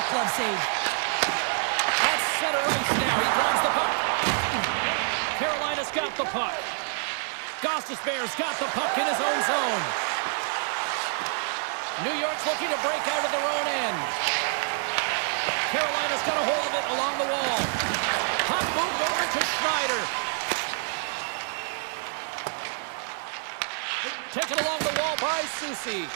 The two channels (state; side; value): silent; left; 56 dB below the other